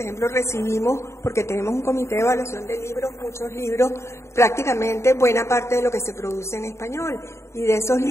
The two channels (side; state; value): right; late; 0.13 ms